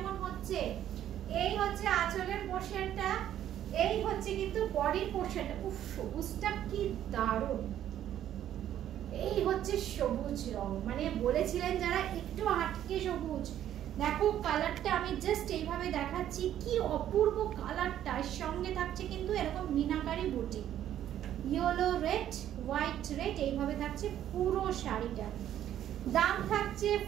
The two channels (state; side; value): quieter; left; 11.3 dB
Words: হচ্ছে? এই হচ্ছে আঁচলের পোর্শনটা, এই হচ্ছে কিন্তু বডির পোর্শনটা। উফ সবুজটা কি দারুণ। এই হচ্ছে সবুজ রং, মানে বলেছিলেন যারা একটু আটকে সবুজ। দেখো কালারটা আমি জাস্ট এইভাবে দেখাচ্ছি, কি অপূর্ব কালারটা। এর সঙ্গে থাকছে কিন্তু এরকম মিনাকারি বুটি, ইয়েলো রেড হোয়াইট রেড, এইভাবে থাকছে পুরো শাড়িটা। দাম থাকছে